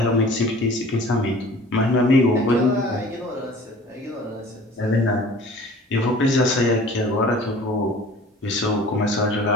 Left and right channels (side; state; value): both; normal; correlation 0.46